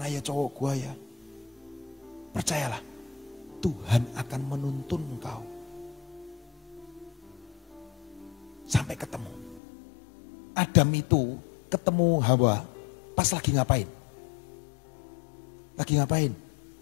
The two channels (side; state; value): right; drops out; at 9.6 s